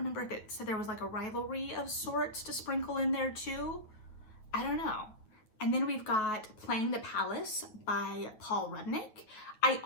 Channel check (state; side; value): late; right; 9.1 ms